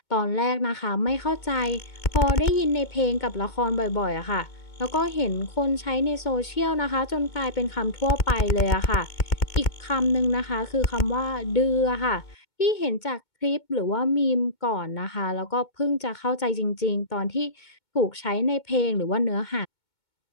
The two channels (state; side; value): late; right; 2.2 ms